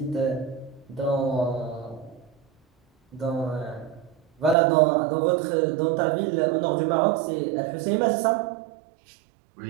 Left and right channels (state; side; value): drops out; left; at 4.5 s